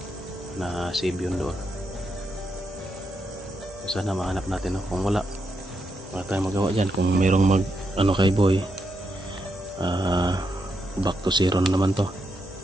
na save yun doon. So sana mahanap natin. Kung wala tayong magawa dyan. Kung merong ano kay Boy, back to zero na naman to.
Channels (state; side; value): normal; both; correlation 0.82